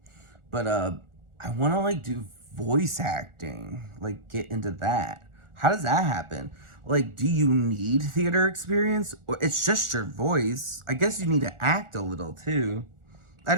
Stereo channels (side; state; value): left; late; 1.4 ms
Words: But I want to like do voice acting, like get into that. How does that happen? Like, do you need theater experience, or it's just your voice? I guess you need to act a little too. I